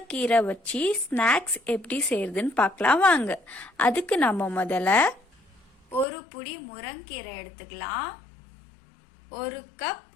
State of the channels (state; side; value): drops out; right; at 6.1 s